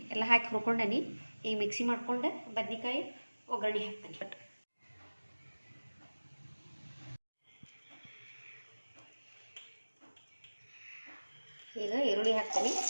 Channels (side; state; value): both; inverted; correlation -1.00